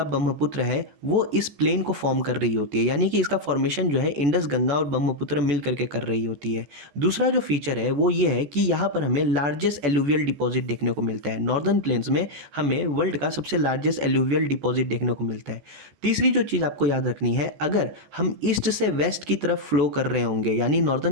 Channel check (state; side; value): late; left; 14 ms